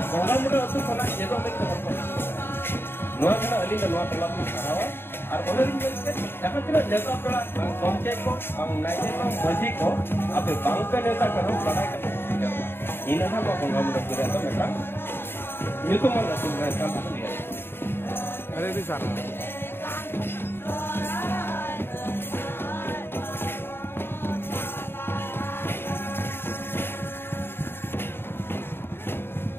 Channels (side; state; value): right; late; 0.11 ms